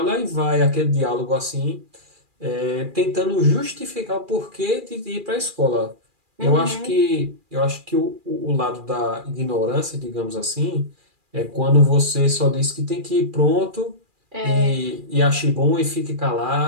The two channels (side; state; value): left; late; 2.4 ms